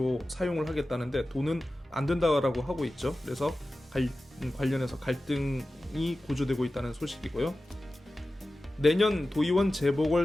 사용을 하겠다는데 돈은 안 된다고 하고 있죠. 그래서 관련해서 갈등이 고조되고 있다는 소식이고요. 내년 도의원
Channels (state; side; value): normal; both; correlation 0.95